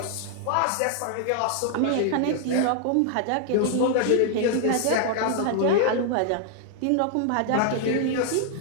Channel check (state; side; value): different; both; correlation 0.00